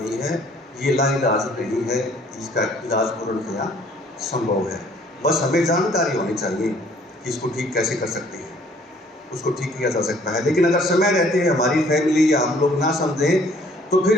है। ये लाइलाज नहीं है, इसका इलाज पूर्णतया संभव है। बस हमें जानकारी होनी चाहिए कि इसको ठीक कैसे कर सकते हैं, उसको ठीक किया जा सकता है। लेकिन अगर समय रहते हैं हमारी फैमिली या हम लोग ना समझें तो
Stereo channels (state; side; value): normal; both; correlation 0.59